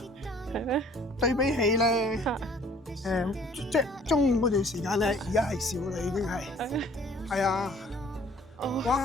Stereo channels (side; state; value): both; normal; correlation 0.55